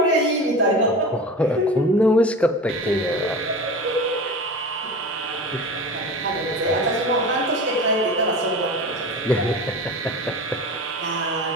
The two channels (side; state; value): both; normal; correlation 0.32